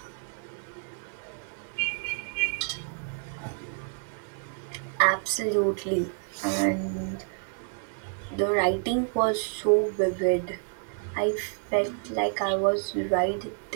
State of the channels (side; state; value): left; silent; 59 dB below the other